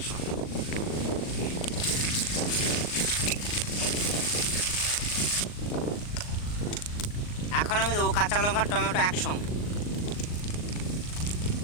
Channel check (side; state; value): right; late; 39 ms